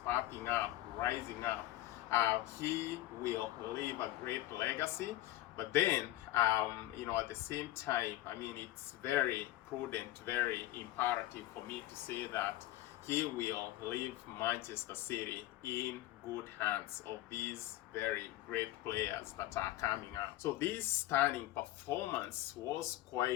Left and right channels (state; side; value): quieter; right; 15.8 dB